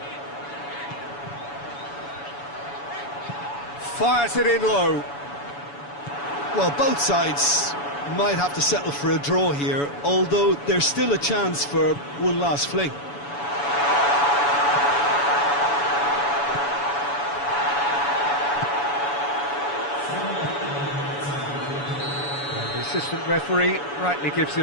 Fires it in low. Well, both sides might have to settle for a draw here, although there's still a chance for one last fling. And the assistant referee rightly gives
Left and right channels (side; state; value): right; late; 7.0 ms